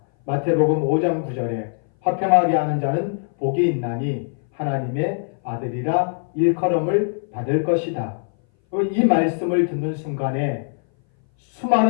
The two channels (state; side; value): silent; right; 60 dB below the other